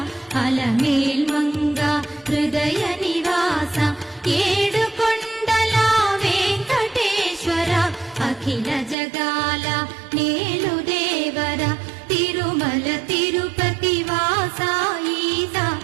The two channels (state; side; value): drops out; left; at 9.0 s